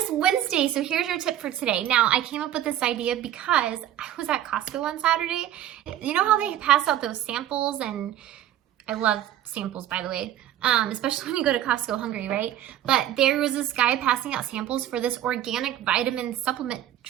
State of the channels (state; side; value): quieter; left; 12.0 dB